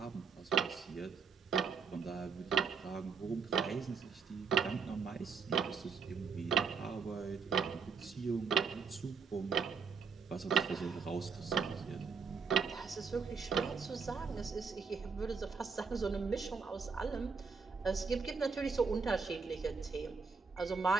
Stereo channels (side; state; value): left; quieter; 5.5 dB